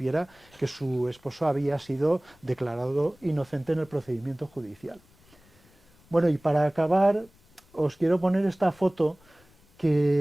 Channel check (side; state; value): left; noise; rumble, 30 dB below the sound